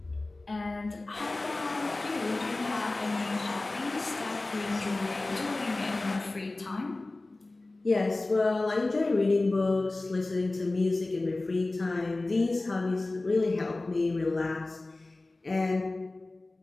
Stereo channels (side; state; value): right; quieter; 3.0 dB